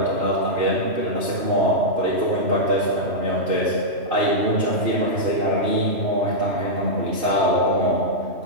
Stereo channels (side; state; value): left; late; 3.0 ms